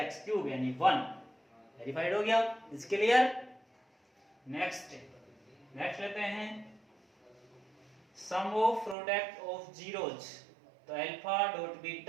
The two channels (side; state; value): left; drops out; at 9.0 s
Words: cube यानी 1, वेरीफाइड हो गया, इज क्लियर। नेक्स्ट लेते हैं sum of product of zeros, तो alpha dot